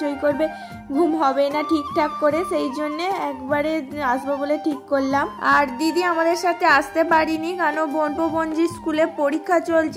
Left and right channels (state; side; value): identical; both; correlation 1.00